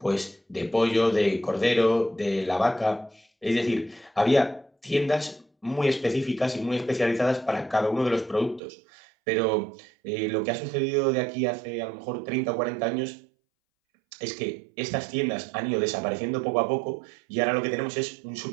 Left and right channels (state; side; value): drops out; left; at 8.6 s